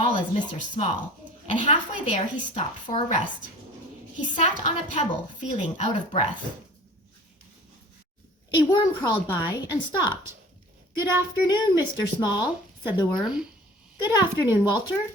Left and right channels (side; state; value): both; normal; correlation 0.44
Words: as Mr. Small, and halfway there he stopped for a rest. He sat on a pebble, feeling out of breath. A worm crawled by and stopped. "Good afternoon, Mr. Small," said the worm. "Good afternoon, Walter,"